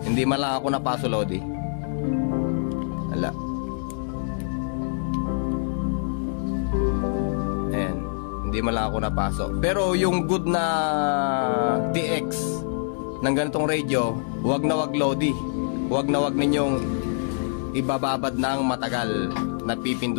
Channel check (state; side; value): silent; right; 62 dB below the other